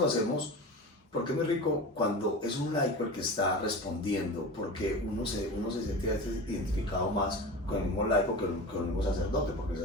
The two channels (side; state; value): both; normal; correlation 0.30